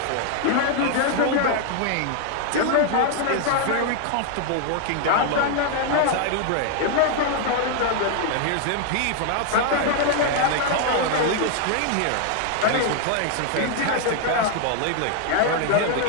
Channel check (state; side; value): different; both; correlation 0.00